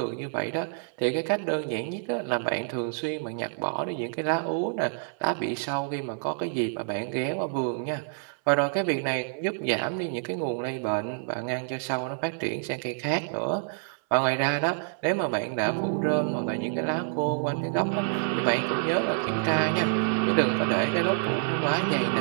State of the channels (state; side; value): silent; left; 60 dB below the other